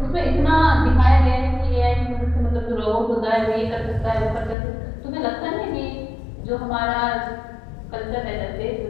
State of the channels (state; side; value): drops out; right; at 4.5 s